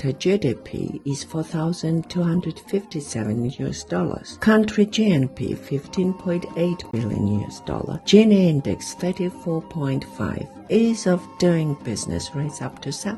GDP is $4,257. Country GNP $15.8 billion. Gini index 34.5. Ease of doing business rates up to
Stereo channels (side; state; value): both; identical; correlation 1.00